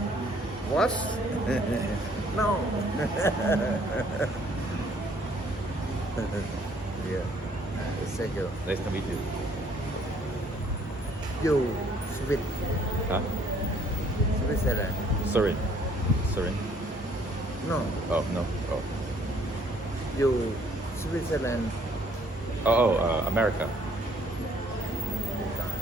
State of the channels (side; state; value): both; normal; correlation 0.62